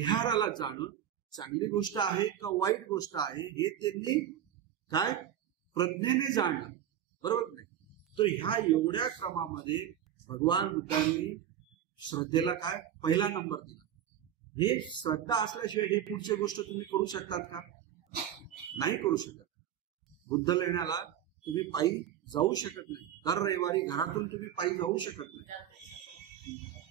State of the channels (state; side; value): quieter; left; 10.3 dB